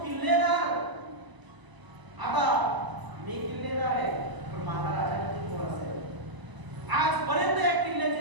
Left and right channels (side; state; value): left; late; 1.0 ms